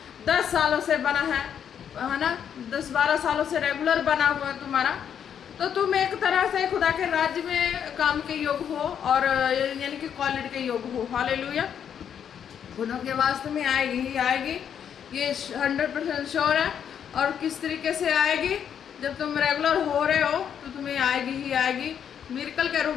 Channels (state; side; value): quieter; right; 8.5 dB